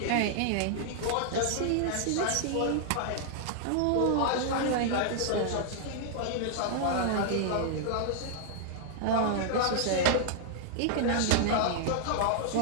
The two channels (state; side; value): different; both; correlation -0.01